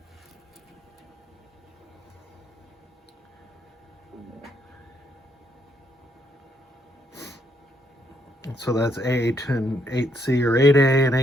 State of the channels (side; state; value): both; normal; correlation 0.73